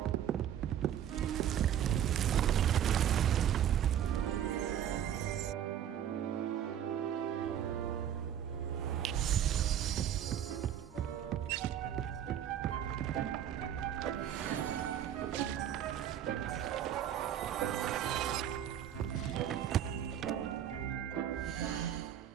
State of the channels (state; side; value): quieter; left; 10.1 dB